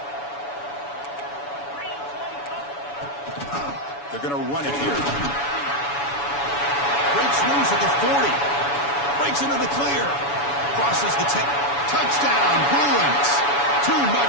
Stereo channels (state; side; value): late; right; 7.1 ms